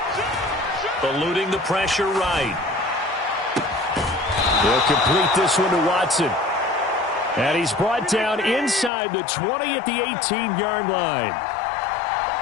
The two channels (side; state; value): right; drops out; at 8.9 s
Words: Eluding the pressure right. They'll complete this one to Watson. And he's brought down inside the 20 at the 18-yard line.